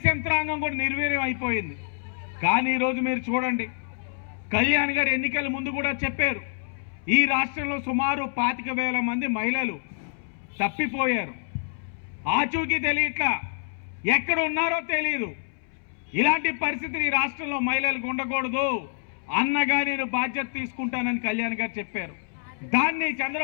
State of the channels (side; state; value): right; silent; 60 dB below the other